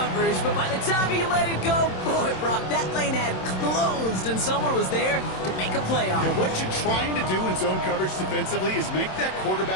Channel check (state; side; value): late; right; 27 ms